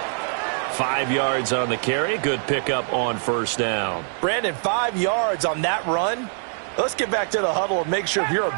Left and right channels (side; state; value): left; silent; 59 dB below the other